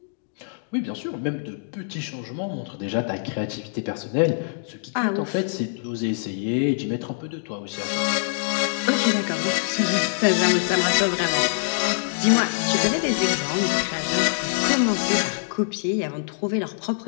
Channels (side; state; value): right; silent; digital silence